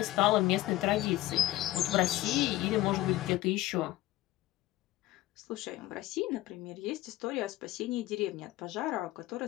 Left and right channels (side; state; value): right; quieter; 16.1 dB